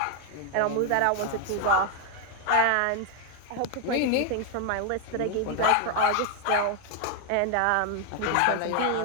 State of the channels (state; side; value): different; both; correlation 0.01